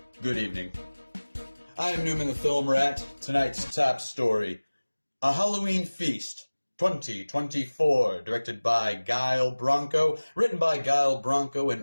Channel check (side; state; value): both; inverted; correlation -1.00